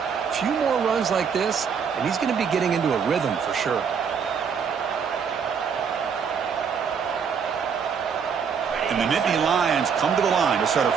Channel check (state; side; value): quieter; left; 6.6 dB